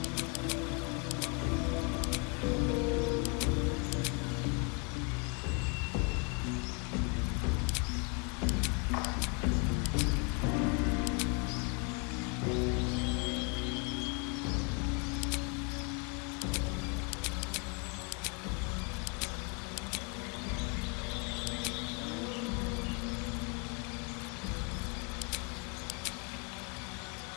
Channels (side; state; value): right; quieter; 34.6 dB